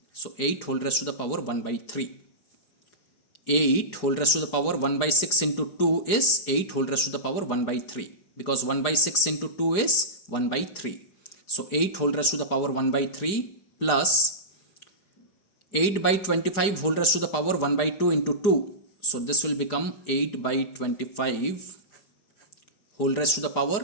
So 8 whole raised to the power 1 by 3. 8 whole raised to the power 1 by 6 into 2 is 8 whole raised to the power 1 by 3. Because 1 by 6 into 2 is 1 by 3. So 8 whole raised to the power 1 by 3 plus 8 by 25 whole raised to the power 1 by 2 into 2. So this will become 8 by 25 whole raised to the power.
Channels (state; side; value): late; right; 4.9 ms